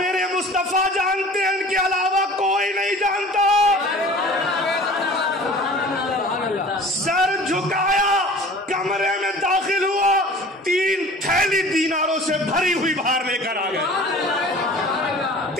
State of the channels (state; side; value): normal; both; correlation 0.44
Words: مصطفیٰ جانتے ہیں، ان کے علاوہ کوئی نہیں جانتا۔ سر جھکایا، کمرے میں داخل ہوا، 3 تھیلی دیناروں سے بھری ہوئی باہر لے کر آ گئے،